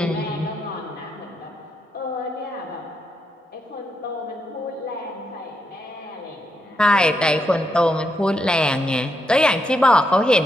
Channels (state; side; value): normal; both; correlation 0.81